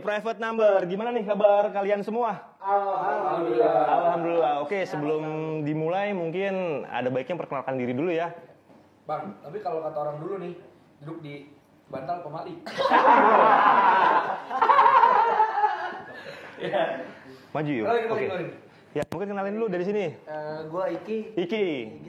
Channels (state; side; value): identical; both; correlation 1.00